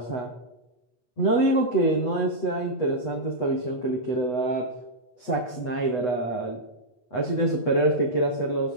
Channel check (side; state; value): right; late; 8.1 ms